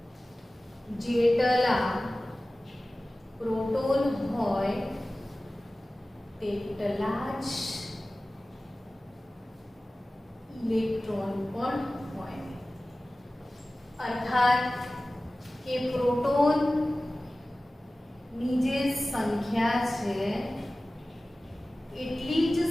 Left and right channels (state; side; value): normal; both; correlation 0.97